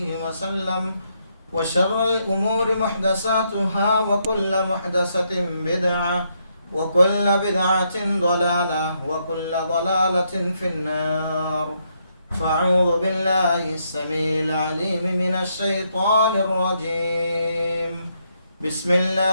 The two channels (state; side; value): inverted; both; correlation -0.77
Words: وسلم وشر الأمور محدثاتها وكل محدثة بدعة وكل بدعة ضلالة وكل ضلالة في النار فأعوذ بالله السميع العليم من الشيطان الرجيم بسم